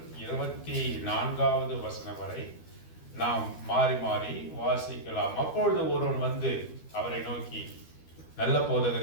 24வது வசனம் வரை நாம் மாறி மாறி வாசிக்கலாம். அப்பொழுது ஒருவன் வந்து அவரை நோக்கி, நல்ல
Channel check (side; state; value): right; late; 12 ms